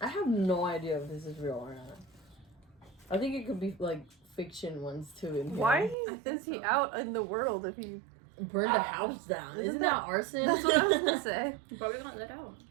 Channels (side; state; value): left; drops out; at 6.0 s